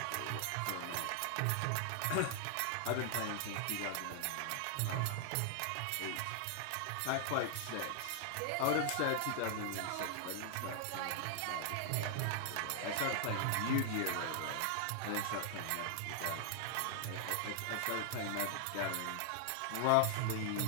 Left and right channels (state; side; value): different; both; correlation 0.00